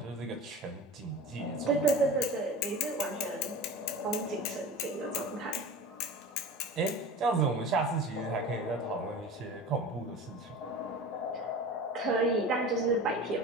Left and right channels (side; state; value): both; normal; correlation 0.35